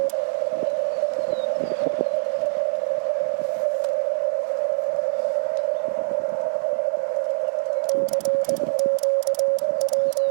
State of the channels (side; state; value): left; silent; digital silence